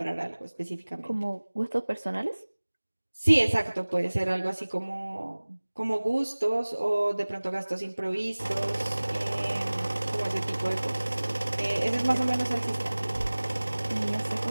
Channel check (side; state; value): both; inverted; correlation -1.00